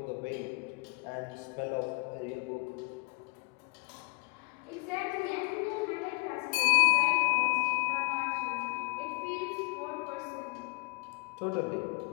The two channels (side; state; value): right; quieter; 29.2 dB